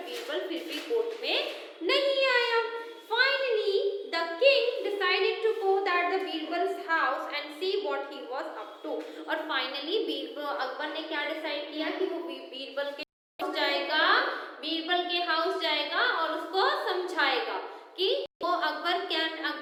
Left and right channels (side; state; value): both; identical; correlation 1.00